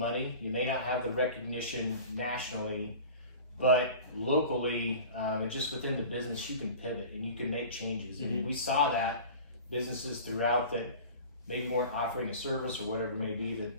you may not have the recognition nationally, but locally, and just within the business, you can pivot and you can make changes. And we saw that businesses throughout that maybe weren't offering a service or whatever it may be that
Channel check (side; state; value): both; inverted; correlation -0.39